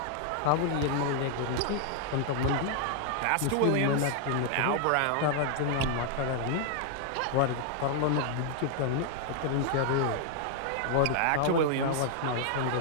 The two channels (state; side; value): different; both; correlation 0.00